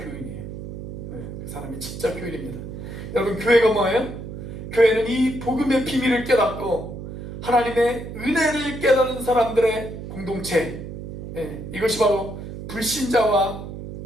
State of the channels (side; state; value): right; noise; hum, 9 dB below the sound